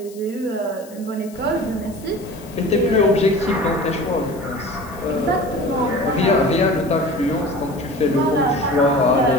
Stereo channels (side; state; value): left; noise; hiss, 22 dB below the sound